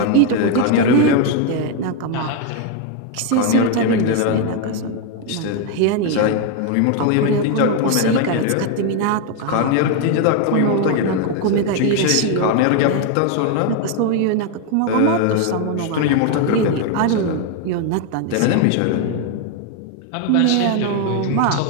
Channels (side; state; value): both; different; correlation 0.01